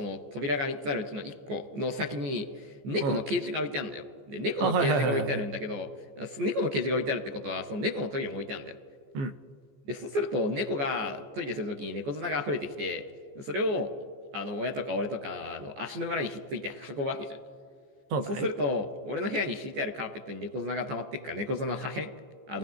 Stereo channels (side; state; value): left; late; 14 ms